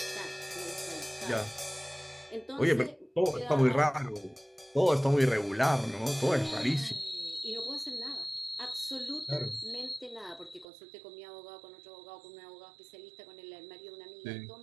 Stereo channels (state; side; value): drops out; left; at 10.7 s